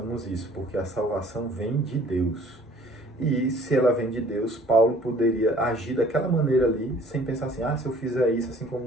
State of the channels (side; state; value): both; normal; correlation 0.53